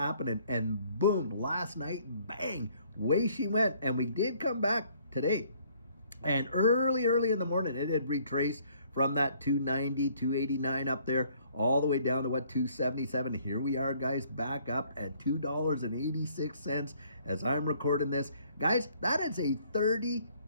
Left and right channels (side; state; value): both; inverted; correlation -0.63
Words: And boom, last night, bang, way she went. And we did come back today. And early in the morning, it had retraced from that 290, 289 up there, all the way down to what, 277. Here we are, guys, back up at $2.86 as I'm recording this. Guys, that is a